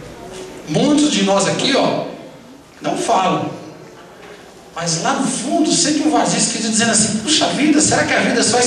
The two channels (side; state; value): both; identical; correlation 1.00